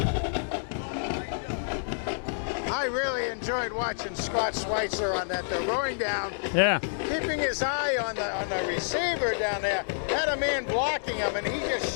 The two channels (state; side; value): silent; right; digital silence